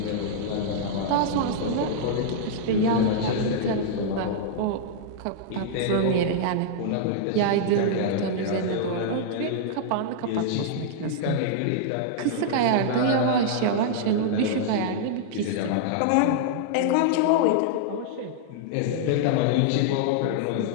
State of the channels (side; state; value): both; different; correlation -0.02